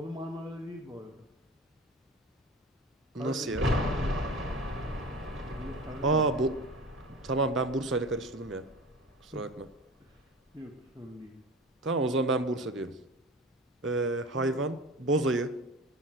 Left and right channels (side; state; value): both; normal; correlation 0.35